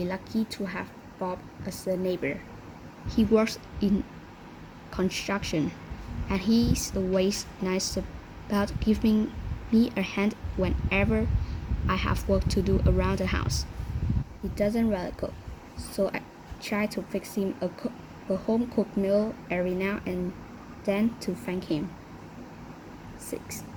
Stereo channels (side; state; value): both; identical; correlation 1.00